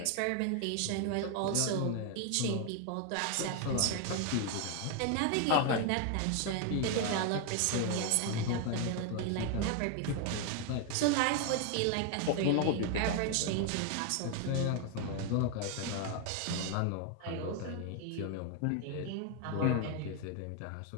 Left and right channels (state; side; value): different; both; correlation 0.01